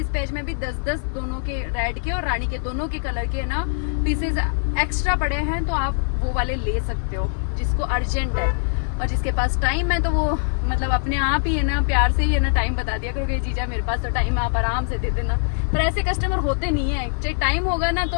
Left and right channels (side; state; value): right; silent; 57 dB below the other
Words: में भी 10-10 दोनों के, रेड के और रानी के दोनों के कलर के ना पीसेज एक्स्ट्रा पड़े हैं, तो आप वो वाले ले सकते हो जिसको अर्जेंट है। और जिसके पास टाइम है तो वो मतलब अपने आप ही है ना, प्यार से ही है ना टाइम बता दिया करो कि जीजा मेरे पास तो टाइम है, आप आराम से दे देना। पर ऐसे कस्टमर होते नहीं है, चाहे टाइम होगा ना